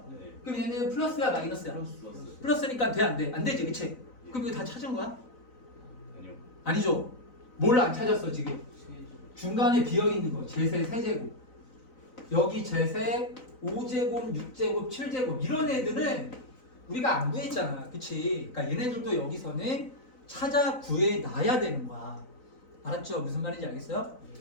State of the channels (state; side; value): late; right; 3.9 ms